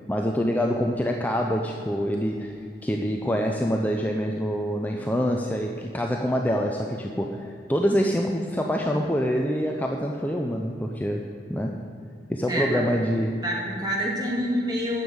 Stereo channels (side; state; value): both; normal; correlation 0.79